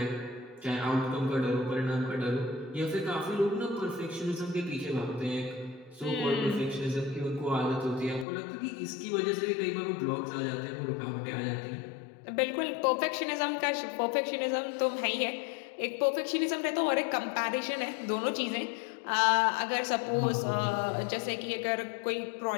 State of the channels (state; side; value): drops out; right; at 8.2 s